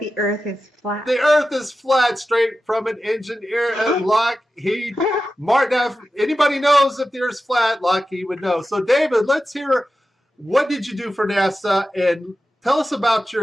Earth is flat. The Earth is flat, straight from an engineer at Lockheed Martin. Now, if anybody knows if the Earth's flat, Lockheed would know. So, David, let's hear, what did you do for NASA? And tell us about your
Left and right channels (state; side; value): normal; both; correlation 0.93